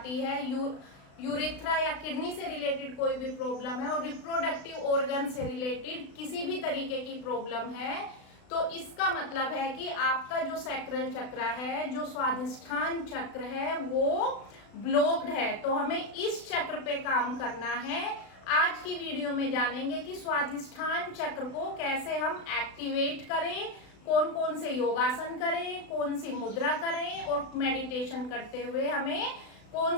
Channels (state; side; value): late; right; 36 ms